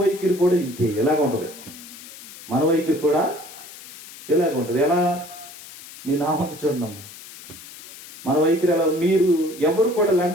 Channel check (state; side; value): noise; left; hiss, 16 dB below the sound